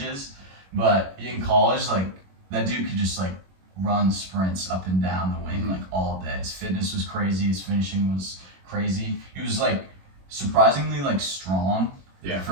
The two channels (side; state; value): left; late; 21 ms